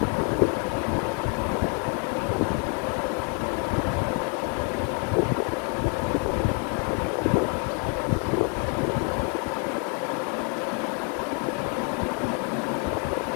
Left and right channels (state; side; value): quieter; right; 37.9 dB